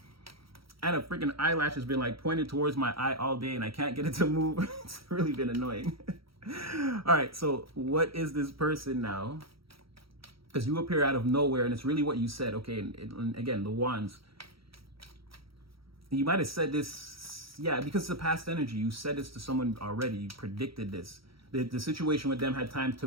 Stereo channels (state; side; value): late; left; 0.75 ms